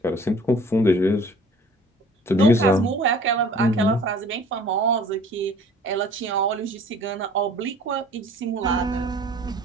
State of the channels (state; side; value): normal; both; correlation 0.49